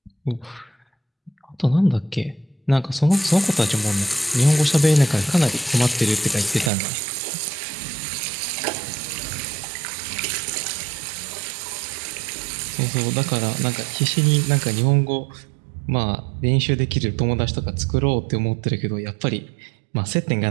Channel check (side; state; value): left; drops out; at 6.7 s